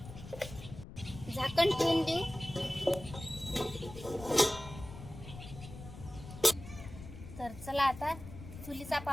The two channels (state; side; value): noise; left; rumble, 13 dB below the sound